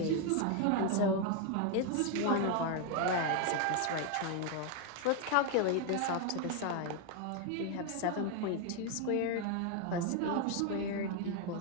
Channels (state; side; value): different; both; correlation 0.01